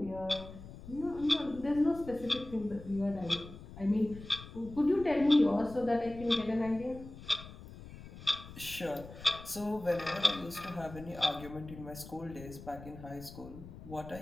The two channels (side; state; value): left; noise; rumble, 15 dB below the sound